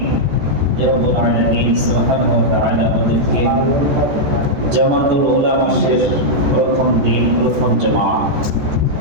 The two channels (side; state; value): left; late; 14 ms